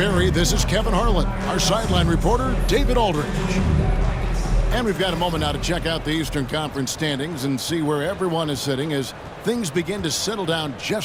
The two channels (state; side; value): identical; both; correlation 1.00